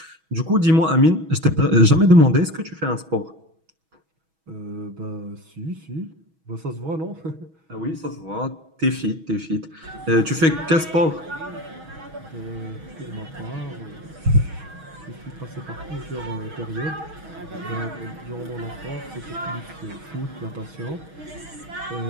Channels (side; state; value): left; late; 6.2 ms